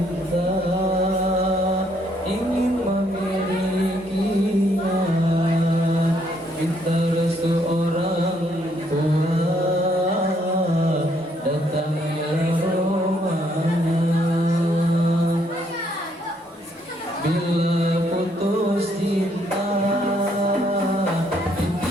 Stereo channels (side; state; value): both; normal; correlation 0.70